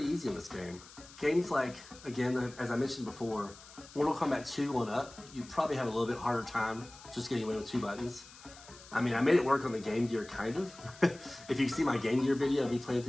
easy on this game. Games like, again, as I mentioned before, Mortal Kombat 2 on up, you probably have a little bit harder time just getting away with 2 buttons. I mean, I made it work on the Game Gear, kind of. If you see my Game Gear video of me playing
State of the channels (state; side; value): noise; left; hiss, 20 dB below the sound